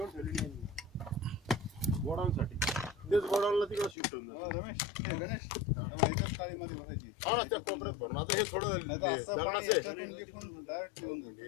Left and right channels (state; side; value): drops out; right; at 4.0 s